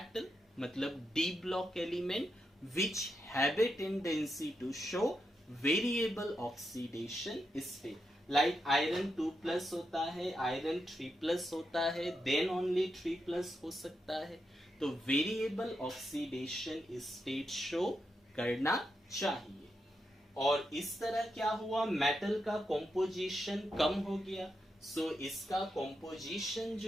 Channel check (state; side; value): normal; both; correlation 0.85